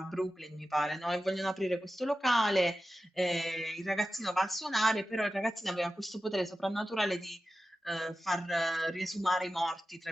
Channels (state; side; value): normal; both; correlation 0.93